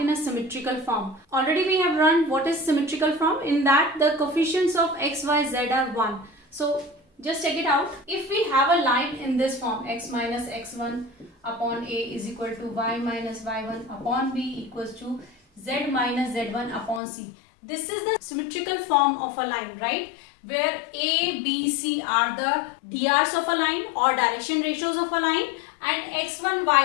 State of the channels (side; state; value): right; drops out; at 17.0 s